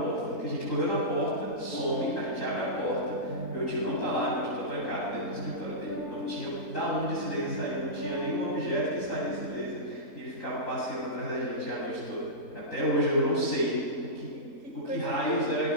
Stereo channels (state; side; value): late; right; 3.8 ms